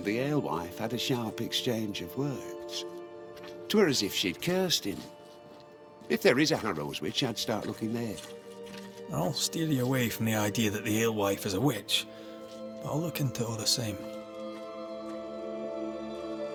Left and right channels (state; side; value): identical; both; correlation 1.00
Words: the alewife had a sharp exchange of words. 'Twere as if she'd cursed him. If there is a Harrow's witch, I'd start looking there. I'll steer you away from the idea that the alewife is a witch, but I'll look into it all the same.